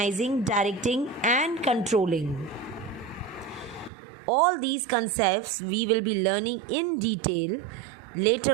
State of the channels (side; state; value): left; drops out; at 3.9 s